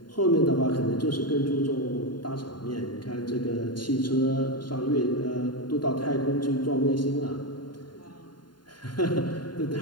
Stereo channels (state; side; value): late; right; 0.71 ms